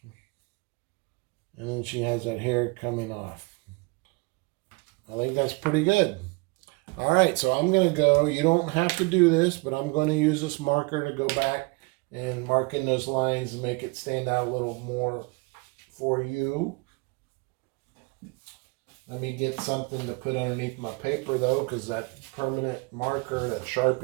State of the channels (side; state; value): left; quieter; 28.1 dB